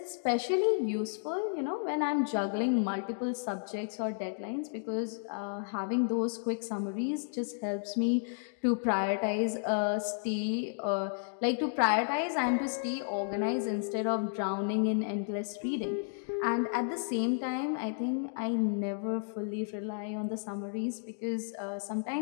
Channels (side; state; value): right; silent; digital silence